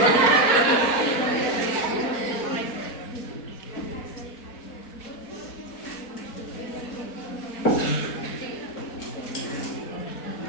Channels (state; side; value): late; right; 4.2 ms